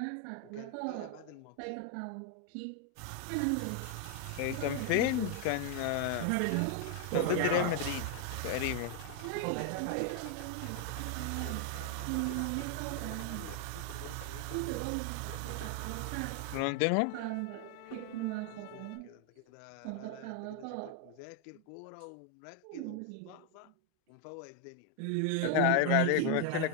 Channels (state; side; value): different; both; correlation 0.01